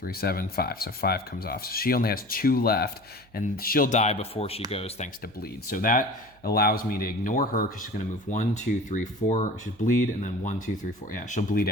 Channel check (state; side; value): noise; right; hum, 29 dB below the sound